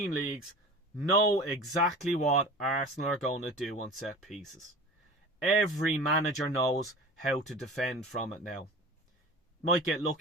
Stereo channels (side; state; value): both; normal; correlation 0.37